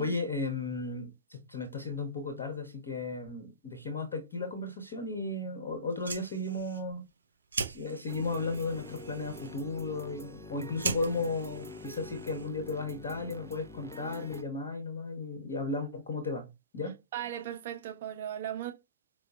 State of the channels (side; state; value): both; inverted; correlation -0.40